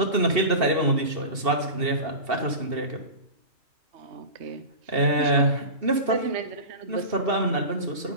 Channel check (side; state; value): left; late; 2.7 ms